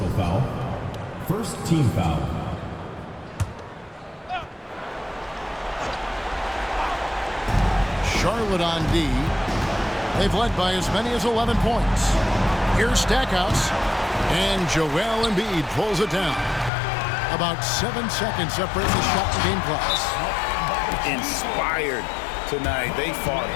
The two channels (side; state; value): right; drops out; at 16.7 s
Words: Personal foul. First team foul. Charlotte on D. They've led by as many as 11 points. Here's Stackhouse. And Joel Embiid pulls it down. About 7 seconds separate the shot and game clocks. Inspired tonight. They fought